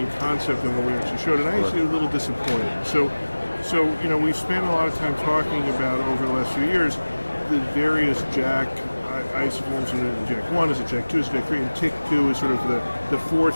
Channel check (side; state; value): both; inverted; correlation -1.00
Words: in concept than what we actually showed, and I actually was a little disappointed. So we've spent a lot of time talking about over the last few years the various JAK isoforms, and JAK1 is a JAK2 is a JAK3, and TYK2 is sort of the